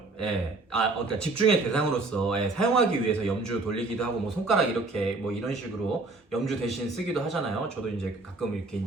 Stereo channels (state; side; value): quieter; left; 3.4 dB